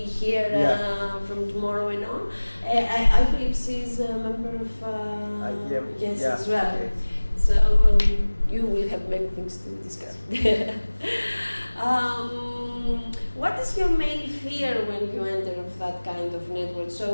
here from tomorrow and on, I believe she's a member of yes as well. Okay. So you will have many things to discuss. What is your main fear when you enter of that kind of network?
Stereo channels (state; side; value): inverted; both; correlation -1.00